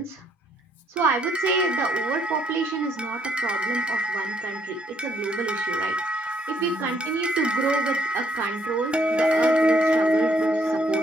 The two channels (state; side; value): normal; both; correlation 0.70